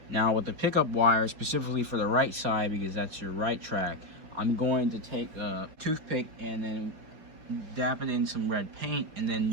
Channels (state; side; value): late; left; 5.0 ms